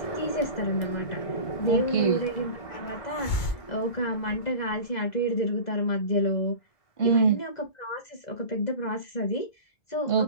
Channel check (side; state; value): right; late; 2.2 ms